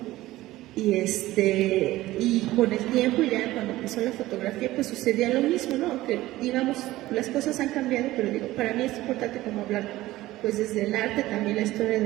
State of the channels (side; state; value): left; quieter; 16.8 dB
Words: Y con el tiempo, ya cuando empezó la fotografía, pues sucedía lo mismo, ¿no? Aunque, digamos, las cosas han cambiado, pero digo, para mí es importante como hablar, pues desde el arte, también la historia